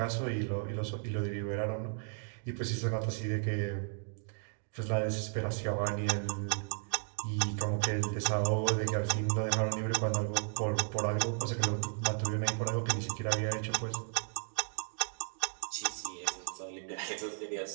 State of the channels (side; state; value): left; silent; 55 dB below the other